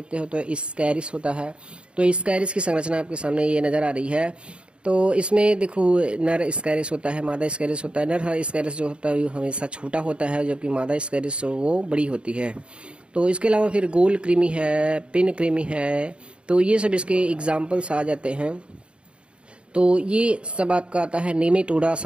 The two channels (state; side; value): late; left; 0.055 ms